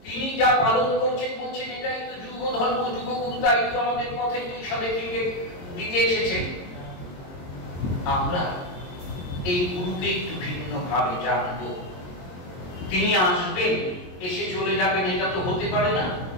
তিনি যা পালন করছেন বলছেন এটাই তো যুগ ধর্ম, যুগগুরু। তাই তো আমাদের পথে দিশা দেখিয়ে দিতে এসেছেন। আমরা এই গুরুকে একটু ভিন্ন ভাবে জানবো। তিনি আসবেন, এসে চলে যাবেন, এটা তো হতে পারে না।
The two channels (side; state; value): right; late; 22 ms